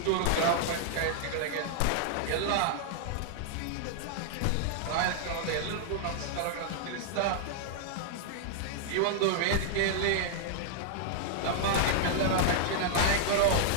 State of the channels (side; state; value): both; different; correlation -0.01